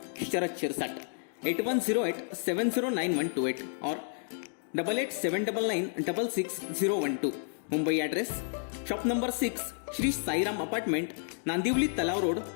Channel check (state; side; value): silent; right; 57 dB below the other